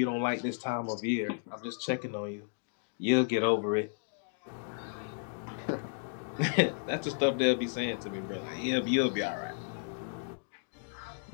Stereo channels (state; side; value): silent; right; digital silence